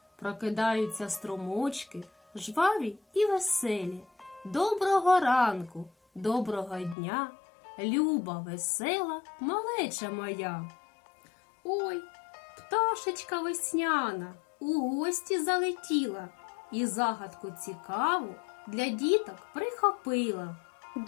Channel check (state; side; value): drops out; right; at 7.0 s